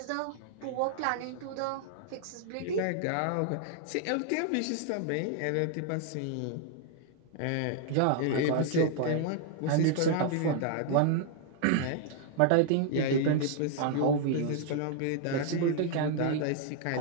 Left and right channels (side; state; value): both; different; correlation 0.00